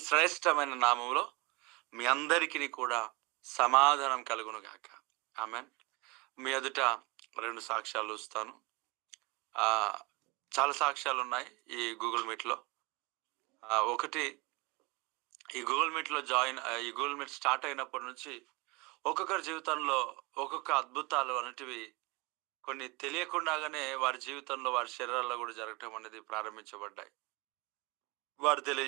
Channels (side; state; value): left; quieter; 26.3 dB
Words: శ్రేష్టమైన నామంలో మీ అందరికీ కూడా సమాధానం కలుగును గాక. ఆమెన్. మీ ఎదుట 2 సాక్ష్యాలు ఇస్తాను. చాలా సాక్ష్యాలు ఉన్నాయి ఈ గూగుల్ మీట్లో. ఒకటి, ఈ గూగుల్ మీట్ స్టార్ట్ అయినప్పటి నుంచి ఒక్కొక్కరి జీవితంలో ఒక్కొక్క అద్భుతాలు అనేటివి కొన్ని తెలియకుండానే వారి జీవితంలో, వారి శరీరాల్లో కూడా జరగటం అనేది ప్రారంభించబడ్డాయి. వారు